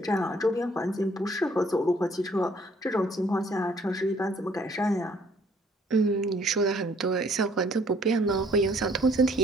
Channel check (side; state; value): both; normal; correlation 0.61